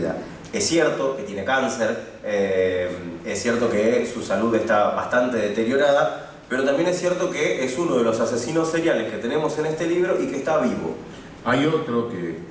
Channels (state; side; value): identical; both; correlation 1.00